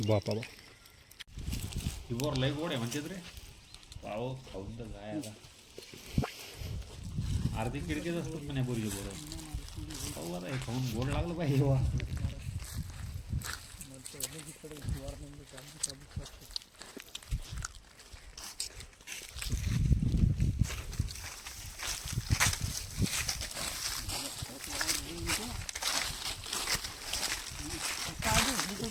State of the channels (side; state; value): both; identical; correlation 1.00